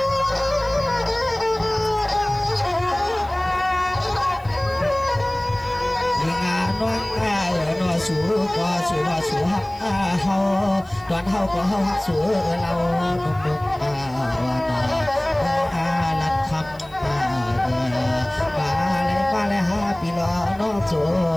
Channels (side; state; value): right; noise; hiss, 27 dB below the sound